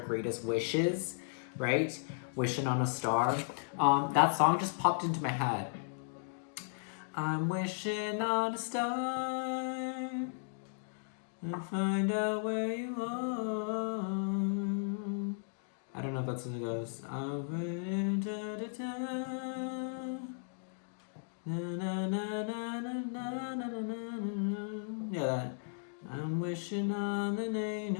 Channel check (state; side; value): silent; right; digital silence